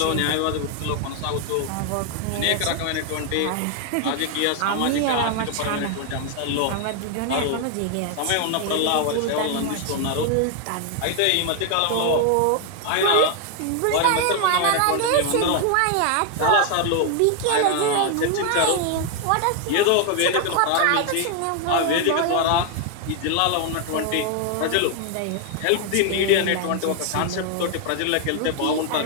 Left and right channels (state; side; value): different; both; correlation 0.00